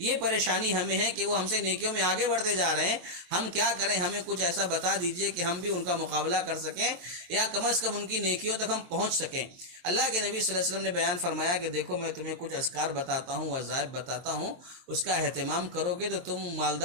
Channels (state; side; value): late; left; 23 ms